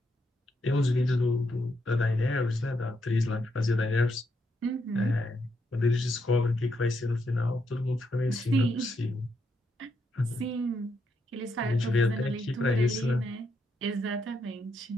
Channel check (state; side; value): normal; both; correlation 0.79